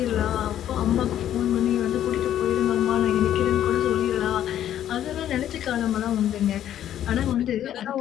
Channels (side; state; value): right; quieter; 11.1 dB